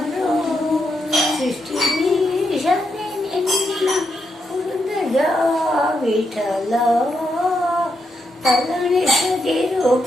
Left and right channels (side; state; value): both; normal; correlation 0.82